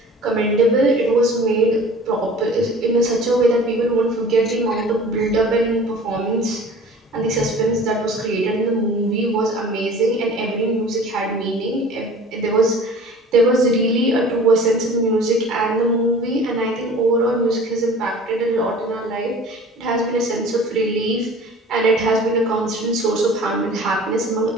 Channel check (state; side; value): normal; both; correlation 0.44